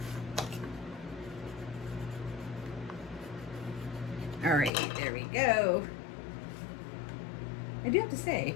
All right, there we go. I do have to say,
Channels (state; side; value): drops out; right; at 4.7 s